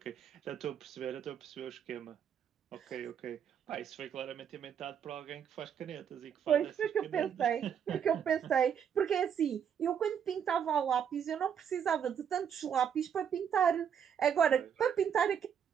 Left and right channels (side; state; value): left; quieter; 8.1 dB